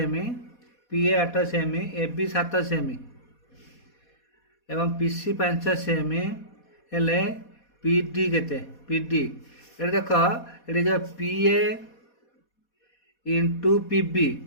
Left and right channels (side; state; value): right; late; 4.2 ms